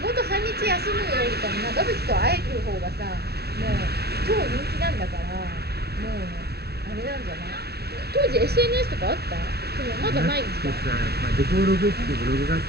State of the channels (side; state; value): left; late; 0.47 ms